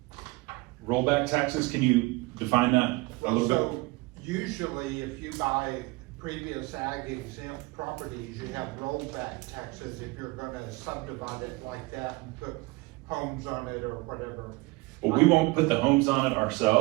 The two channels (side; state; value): left; quieter; 23.8 dB